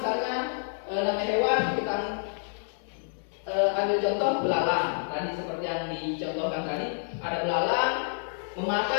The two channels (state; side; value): silent; right; 59 dB below the other